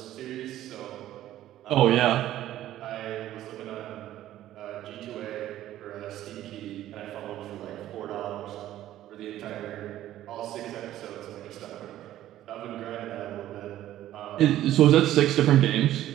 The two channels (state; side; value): quieter; left; 13.2 dB